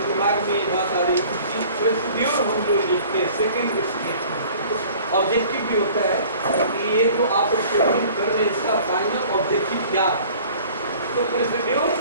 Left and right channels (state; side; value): inverted; both; correlation -0.49